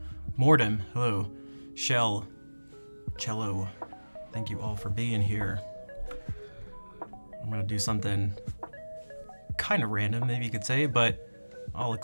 Mordem, hello, Shell, Cello, thank you all for being here. I'm gonna do something kind of random, maybe you could say, but I'll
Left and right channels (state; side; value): inverted; both; correlation -1.00